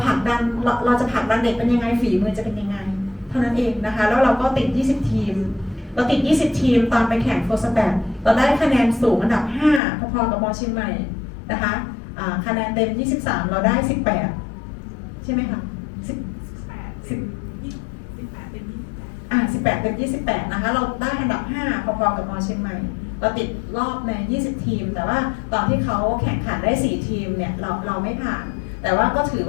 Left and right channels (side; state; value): right; drops out; at 9.8 s